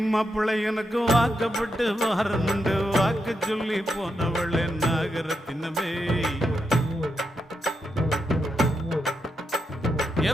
மாப்பிள்ளை எனக்கு வாக்கப்பட்டு வாரமுண்டு வாக்கு சொல்லி போனவளே நாகரத்தினமே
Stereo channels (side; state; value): both; normal; correlation 0.84